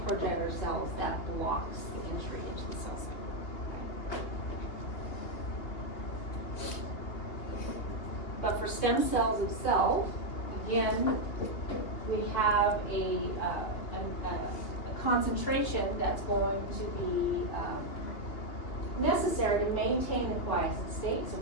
progenitor cells, that blocks the entry into the cell cycle. But for stem cells itself, again, we have a concentration that's going to be necessary to maintain the quiescent state. So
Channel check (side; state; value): right; late; 2.8 ms